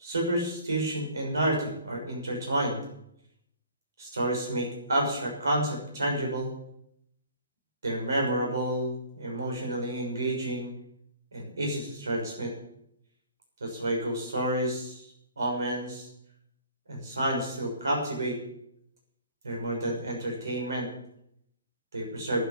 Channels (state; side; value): inverted; both; correlation -0.53